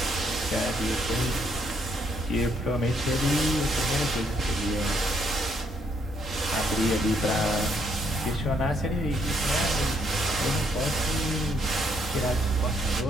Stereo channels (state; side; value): normal; both; correlation 0.72